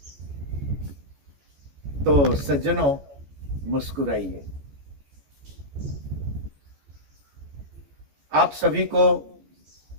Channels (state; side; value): late; left; 14 ms